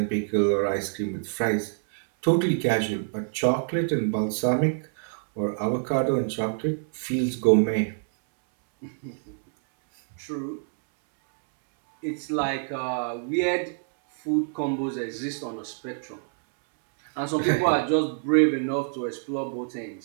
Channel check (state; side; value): silent; left; 61 dB below the other